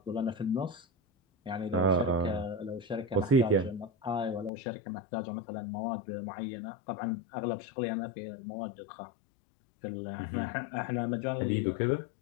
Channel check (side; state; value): right; drops out; at 4.5 s